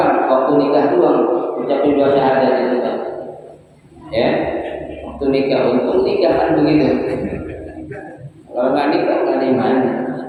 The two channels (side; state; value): both; identical; correlation 1.00